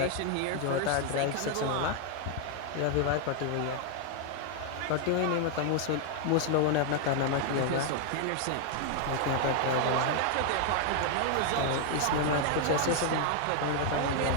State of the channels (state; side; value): different; both; correlation 0.00